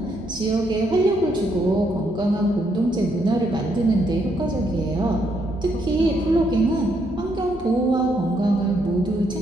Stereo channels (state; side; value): normal; both; correlation 0.75